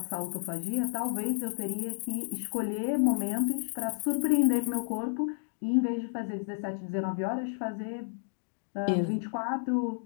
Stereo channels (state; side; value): silent; right; digital silence